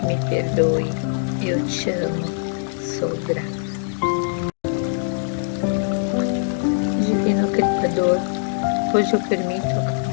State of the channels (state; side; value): silent; right; digital silence